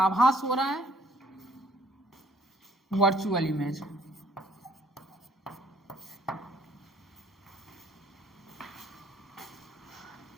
हो रहा है, वर्चुअल इमेज।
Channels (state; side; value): normal; both; correlation 0.61